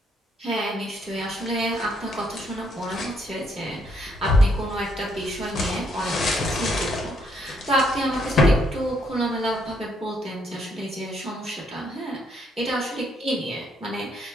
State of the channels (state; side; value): normal; both; correlation 0.72